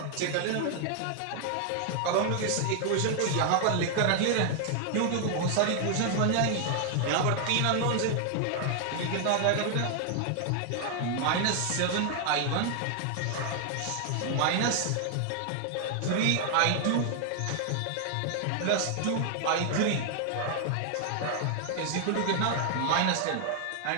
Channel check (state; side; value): different; both; correlation 0.00